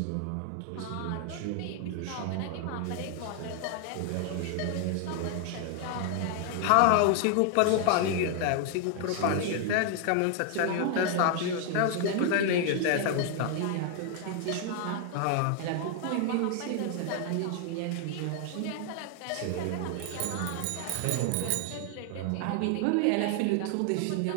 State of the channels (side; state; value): both; different; correlation 0.00